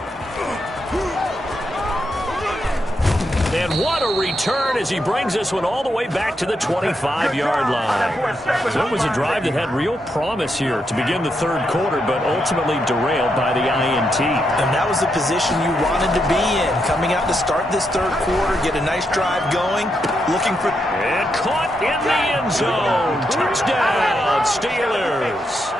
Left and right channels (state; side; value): normal; both; correlation 0.82